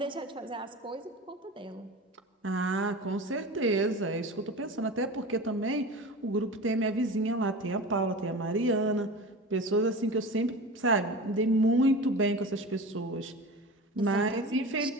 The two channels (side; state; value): both; normal; correlation 0.32